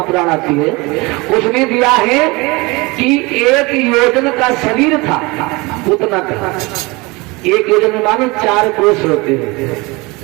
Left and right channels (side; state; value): left; quieter; 24.7 dB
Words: आती है उसमें दिया है कि 1 योजन का शरीर था पूतना का। 1 योजन में मालूम 4 कोष होते हैं।